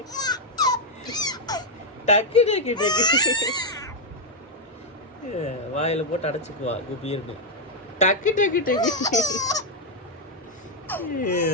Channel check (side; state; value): both; normal; correlation 0.01